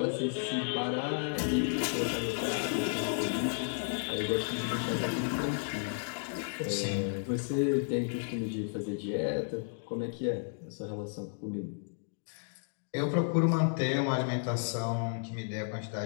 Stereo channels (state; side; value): silent; right; digital silence